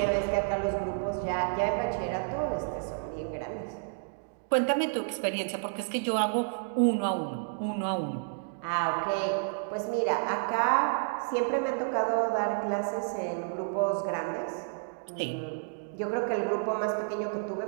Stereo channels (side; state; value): left; silent; digital silence